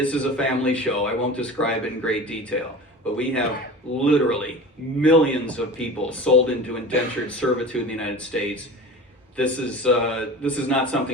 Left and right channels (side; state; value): both; normal; correlation 0.35